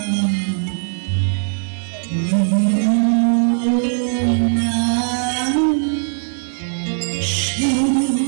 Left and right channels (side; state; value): left; silent; digital silence